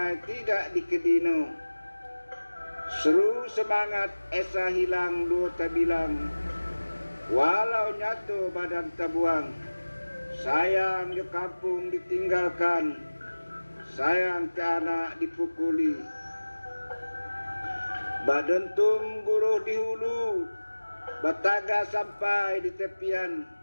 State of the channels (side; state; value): both; inverted; correlation -1.00